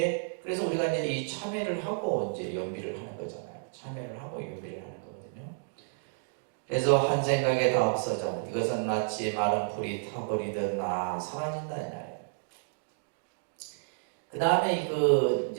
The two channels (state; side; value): silent; left; digital silence